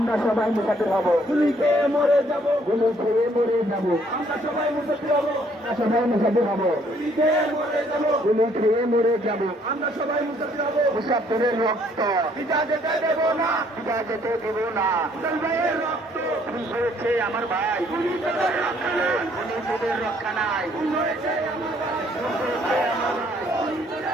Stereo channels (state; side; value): normal; both; correlation 0.64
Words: সবাই মুসাফির হব, গুলি খেয়ে মরে যাব, গুলি খেয়ে মরে যাব, আমরা সবাই মুসাফির হব, আমরা সবাই মুসাফির হব, গুলি খেয়ে মরে যাব, গুলি খেয়ে মরে যাব। আমরা সবাই মুসাফির হব, মুসাফিরের রক্ত পিতা যেতে দেব না, পিতা যেতে দেব না। হাসান ভাইয়ের রক্ত, খুন হয়েছে আমার ভাই, গুলি তোদের রক্ষা নাই, খুনি তোদের রক্ষা নাই। খুন হয়েছে আমার ভাই, খুন হয়েছে আমার ভাই। গুলি